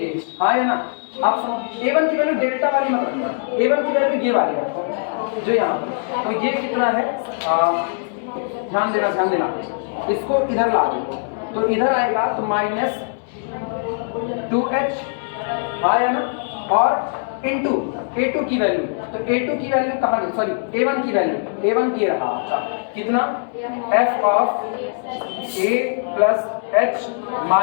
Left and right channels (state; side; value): silent; right; digital silence